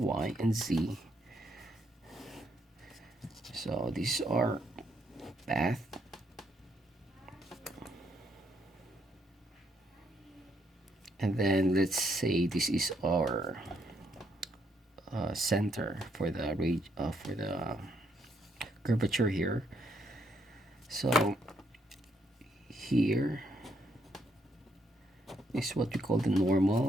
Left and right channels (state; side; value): normal; both; correlation 0.74